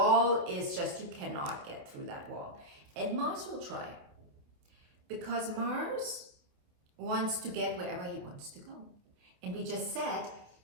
is just, you cannot get through that wall. And Mars will try, because Mars wants to get wherever he wants to go. And we just said,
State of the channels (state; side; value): late; left; 28 ms